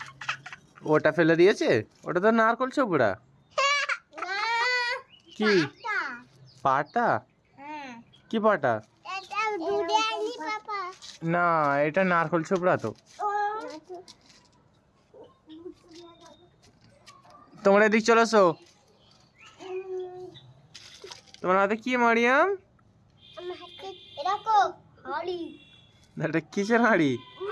ওটা ফেলে দিয়েছে? ওটা তো নারকল ছোবড়া। কি পাটা? কি পাটা? না, এটা নারকল ছোবড়া তো। তোমরা এদিক চলে এসো। তোমার হাতে কি মারিয়াম? এটা কিসের হাঁড়ি?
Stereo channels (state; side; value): identical; both; correlation 1.00